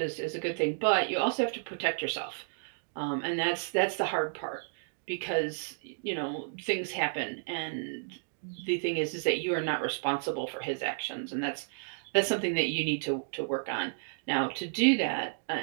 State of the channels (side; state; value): left; silent; digital silence